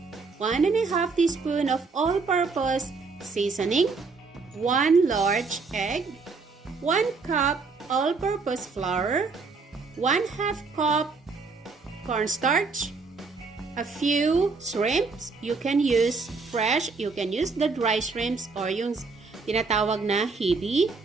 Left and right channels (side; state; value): left; quieter; 4.4 dB